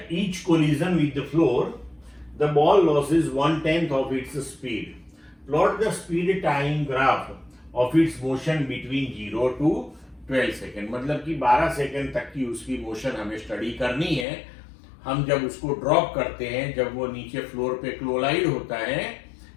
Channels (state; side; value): drops out; right; at 14.2 s